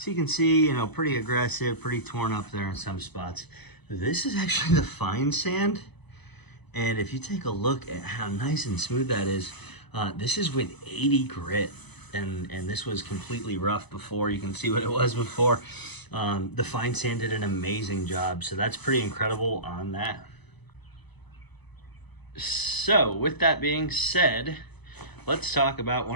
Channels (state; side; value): late; right; 0.99 ms